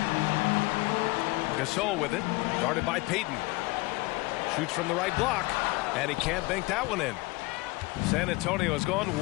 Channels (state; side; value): quieter; right; 22.6 dB